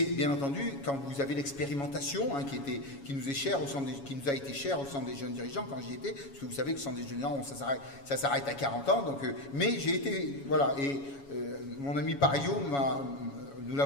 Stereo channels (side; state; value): right; late; 7.2 ms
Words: bien entendu quand vous avez l'expérimentation, hein, qui nous est chère qui nous a été chère au Centre des jeunes dirigeants quand j'y étais, parce que vous savez que le Centre des jeunes dirigeants, ça s'arrête à 40 ans, donc, mais j'ai été, voilà, et mon ami Pario nous